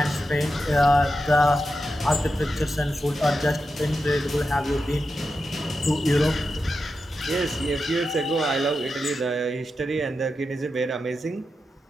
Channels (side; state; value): both; normal; correlation 0.89